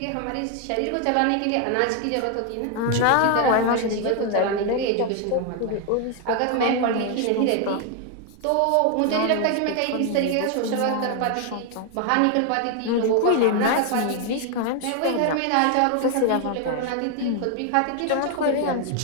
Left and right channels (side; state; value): both; different; correlation 0.00